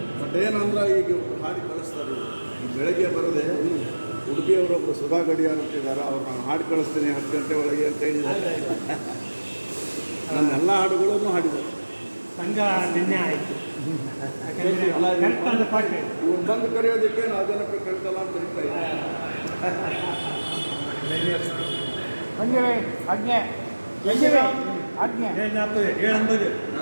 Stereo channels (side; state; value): both; inverted; correlation -1.00